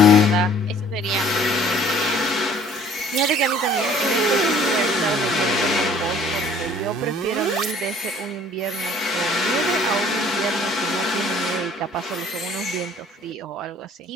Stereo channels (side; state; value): both; normal; correlation 0.54